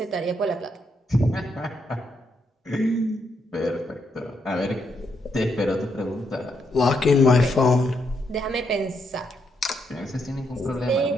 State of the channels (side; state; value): both; normal; correlation 0.78